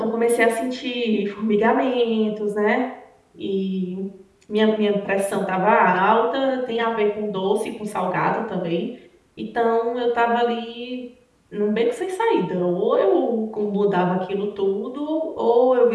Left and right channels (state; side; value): identical; both; correlation 1.00